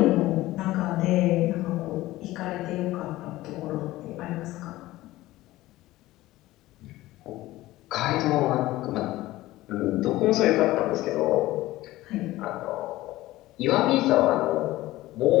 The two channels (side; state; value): right; quieter; 17.1 dB